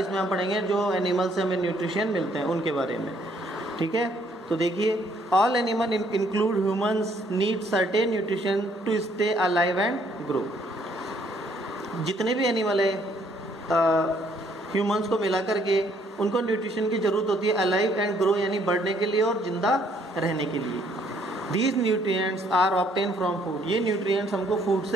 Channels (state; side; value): normal; both; correlation 0.66